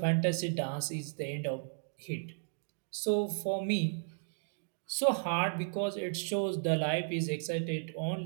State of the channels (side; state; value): left; silent; digital silence